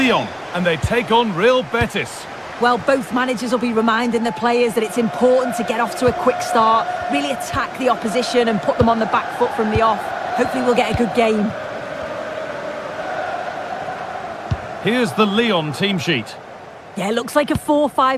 and they take on Real Betis. Well, both managers will be reminding the players that it's important to get off to a quick start, really attack the opposition and put them on the back foot from the off. Hopefully we'll get a good game. Here's the Lyon team sheet. Yeah, it looks like a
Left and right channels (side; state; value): both; identical; correlation 1.00